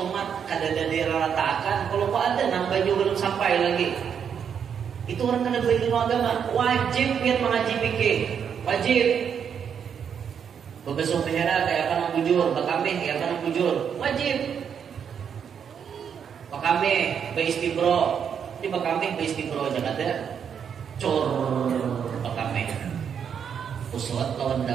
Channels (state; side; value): quieter; left; 7.6 dB